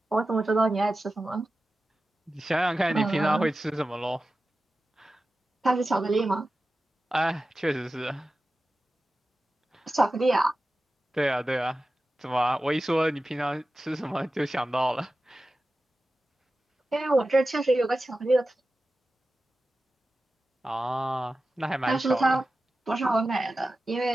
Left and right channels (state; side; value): normal; both; correlation 0.94